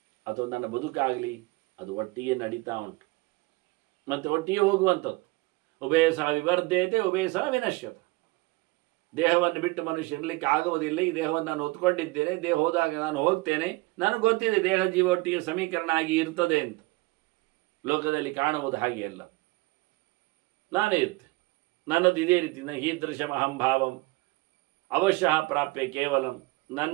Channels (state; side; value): quieter; left; 23.4 dB